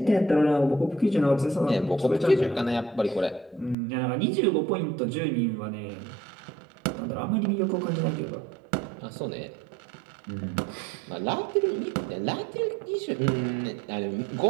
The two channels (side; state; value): left; drops out; at 3.8 s